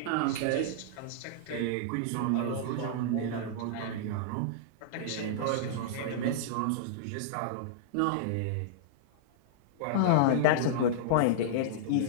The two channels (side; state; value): both; different; correlation -0.02